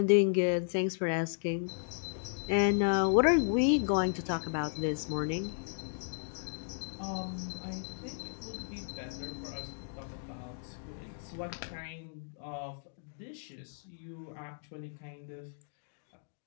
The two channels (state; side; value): silent; right; digital silence